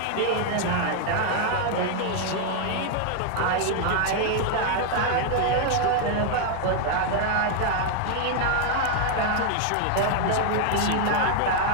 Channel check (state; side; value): different; both; correlation 0.00